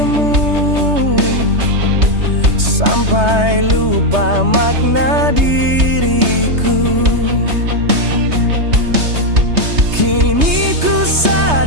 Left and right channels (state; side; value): late; left; 3.3 ms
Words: sampai lupa makna diriku. Kini ku